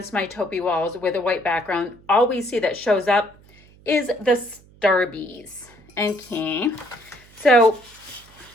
my taupey walls with a white background. All we see that shows up is the Starbies. Okay, so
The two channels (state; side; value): noise; right; hum, 26 dB below the sound